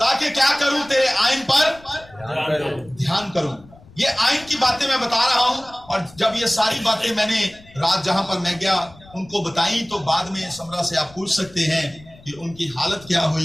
क्या करूं? तेरे आइन पर ध्यान करूं। ये आइन की बातें मैं बता रहा हूं, और जब ये सारी बातें मैंने रात जहां पर मैं गया उनको बताई, तो बाद में समरा से आप पूछ सकते हैं कि उनकी हालत क्या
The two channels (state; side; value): noise; left; rumble, 23 dB below the sound